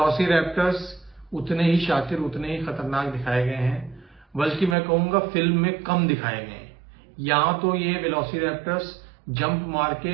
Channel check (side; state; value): left; drops out; at 4.8 s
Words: उतने ही शातिर, उतने ही खतरनाक दिखाए गए हैं, बल्कि मैं कहूंगा फिल्म में कम दिखाए गए हैं। यहां तो ये वेलोसिरैप्टर्स जंप मार